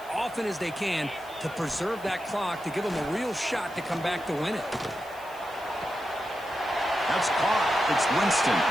often as they can to preserve that clock, to give them a real shot to come back to win it. That's caught. It's Winston.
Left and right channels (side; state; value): right; noise; hiss, 22 dB below the sound